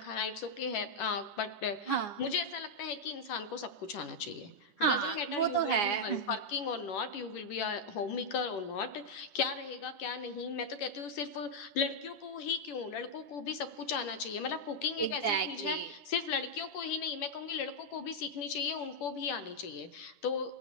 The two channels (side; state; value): right; late; 10 ms